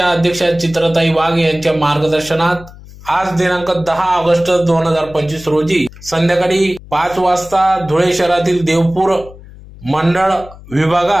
अध्यक्षा चित्रताई वाघ यांच्या मार्गदर्शनात आज दिनांक 10 ऑगस्ट 2025 रोजी संध्याकाळी 5 वाजता धुळे शहरातील देवपूर मंडळ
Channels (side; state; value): left; noise; hum, 19 dB below the sound